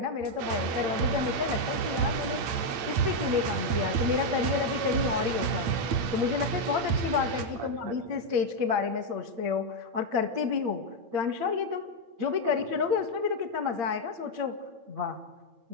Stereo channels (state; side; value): late; left; 8.7 ms